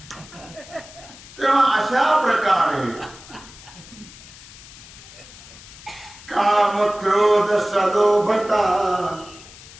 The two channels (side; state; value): left; noise; hiss, 19 dB below the sound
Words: तेव्हा अशा प्रकारे काम क्रोध सलोभता,